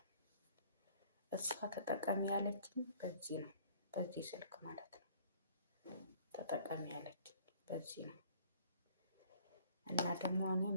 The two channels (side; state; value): both; inverted; correlation -0.56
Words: እሷ ተጠቀሚ ያለችኝ በዚህ ነው፣ በዚህ ስልክ ማለት ነው። ተጠቀሚ ያለችኝ በዚህ ነው እና ደግሞ እኔ